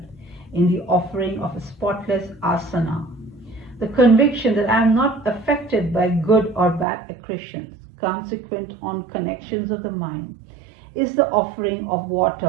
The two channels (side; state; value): left; drops out; at 6.9 s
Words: in the offering of a spotless asana. The conviction that I am not affected by good or bad accretions, consequent on connections of the mind, is the offering of